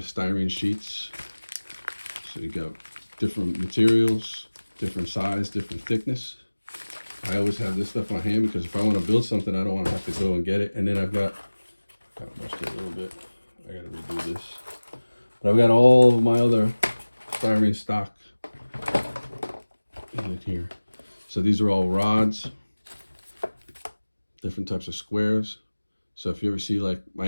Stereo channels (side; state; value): both; inverted; correlation -1.00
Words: styrene sheets. So you got different materials, different size, different thickness. I always have this stuff on hand because if I want to build something, I don't want to have to go and get it. And then I've got, kind of mushed it a little bit. I got to redo this. But I've got all of my other styrene stock in here. So these are all rods, different types of squares. So if you ever see like my